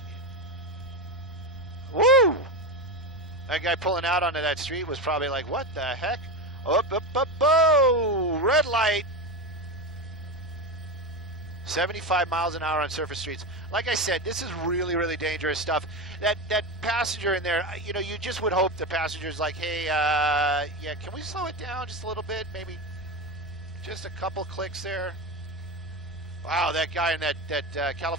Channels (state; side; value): normal; both; correlation 0.17